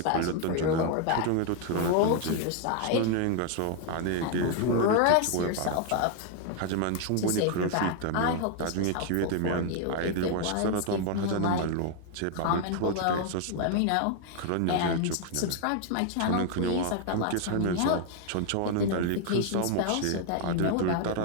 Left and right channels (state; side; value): different; both; correlation 0.00